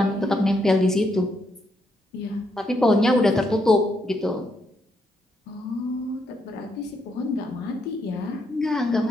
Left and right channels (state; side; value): normal; both; correlation 0.77